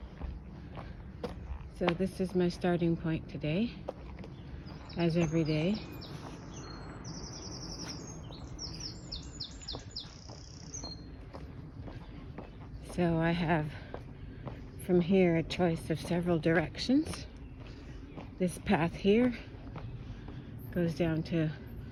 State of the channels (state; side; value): identical; both; correlation 1.00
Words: so this is my starting point today, as every day. So I have from here a choice of several directions. This path here goes down to